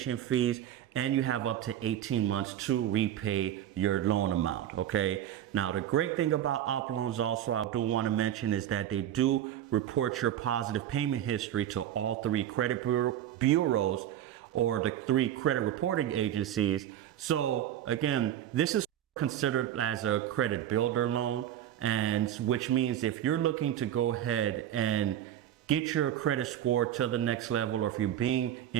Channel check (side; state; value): left; quieter; 11.3 dB